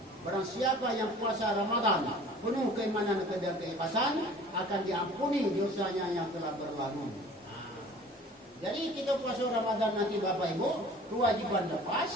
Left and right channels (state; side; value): normal; both; correlation 0.47